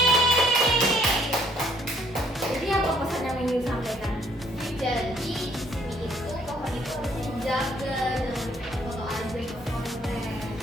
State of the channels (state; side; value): normal; both; correlation 0.64